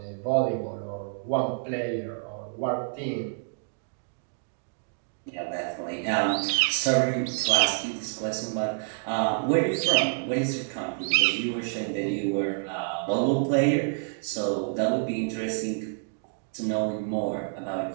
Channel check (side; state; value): left; silent; digital silence